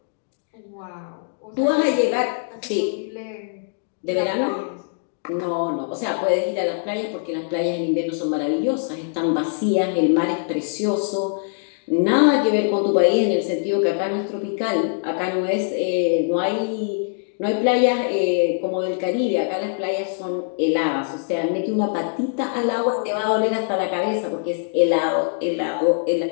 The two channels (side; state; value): right; silent; digital silence